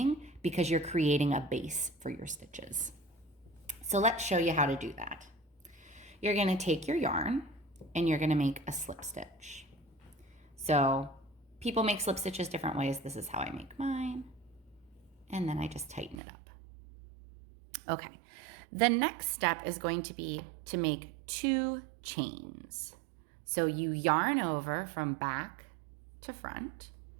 because you're creating a base for your stitches. So let's show you how to do that. You're going to take your yarn and you're going to make a slip stitch. So people make slip stitches different ways. This is how I make mine. And then I just tighten it up. Okay. The next step is going to be to make 2 chains. So you yarn over from back to front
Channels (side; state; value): left; drops out; at 16.2 s